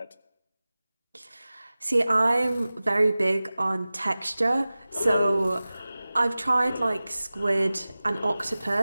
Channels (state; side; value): inverted; both; correlation -0.97